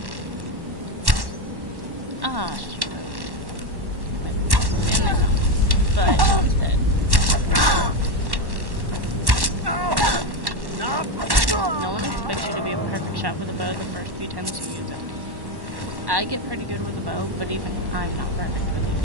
Ah, shoot. In the house. But one's dead. No one expects you to be a perfect shot with a bow the first few times you use it. I get pretty good with a bow, but even I'm not perfect with it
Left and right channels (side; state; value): left; late; 1.1 ms